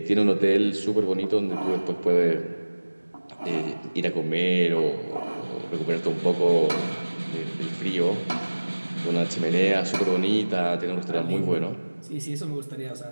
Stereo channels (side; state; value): both; inverted; correlation -1.00